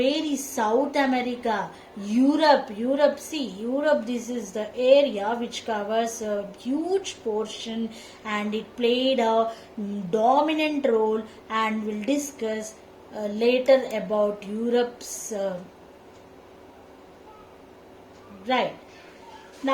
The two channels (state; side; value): identical; both; correlation 1.00